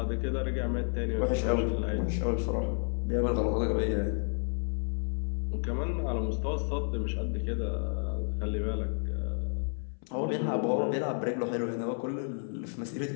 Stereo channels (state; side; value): silent; right; 57 dB below the other